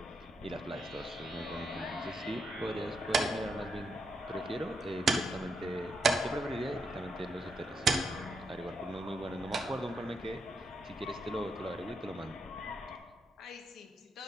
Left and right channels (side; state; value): both; normal; correlation 0.80